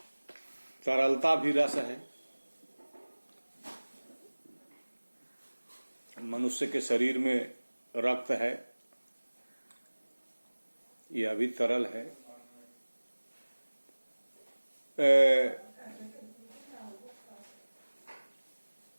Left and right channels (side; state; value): both; inverted; correlation -1.00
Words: तरलता भी रस है। मनुष्य के शरीर में रक्त है, यह भी तरल है।